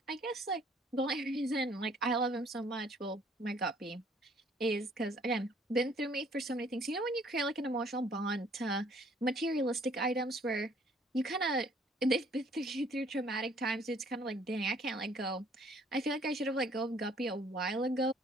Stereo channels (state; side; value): normal; both; correlation 0.60